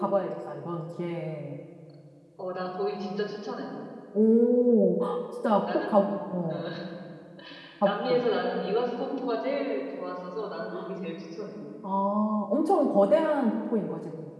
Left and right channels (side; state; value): both; identical; correlation 1.00